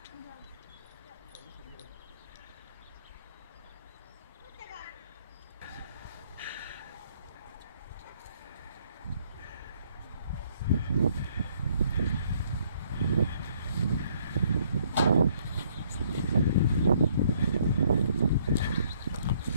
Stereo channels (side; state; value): both; inverted; correlation -0.65